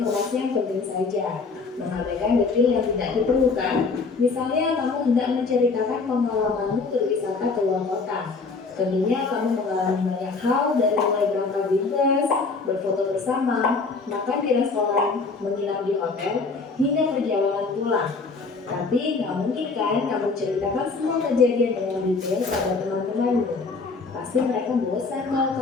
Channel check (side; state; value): right; quieter; 4.3 dB